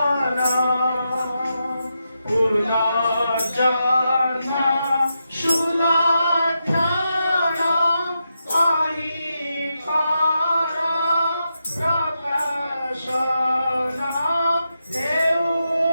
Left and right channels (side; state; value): both; inverted; correlation -0.86